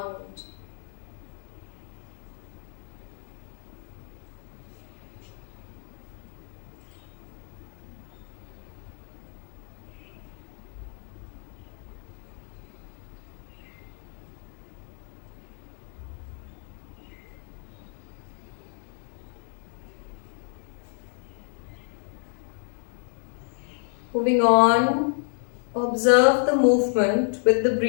Moving on, observe the movement with the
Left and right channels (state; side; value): silent; right; 58 dB below the other